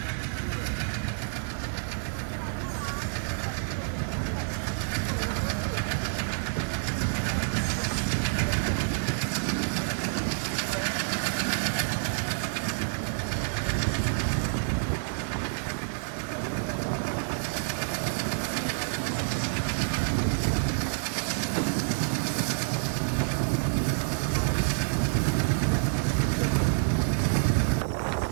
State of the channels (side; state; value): left; silent; digital silence